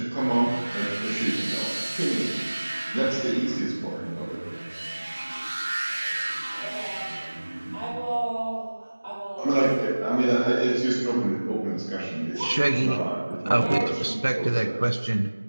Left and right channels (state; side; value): inverted; both; correlation -1.00